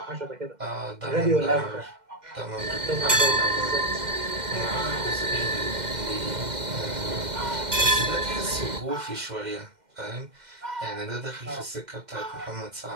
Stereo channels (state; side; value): late; left; 2.1 ms